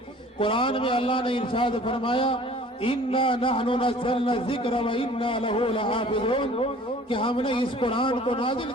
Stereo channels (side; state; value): both; normal; correlation 0.49